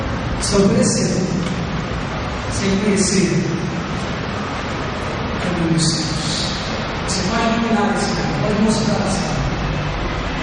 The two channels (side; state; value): both; identical; correlation 1.00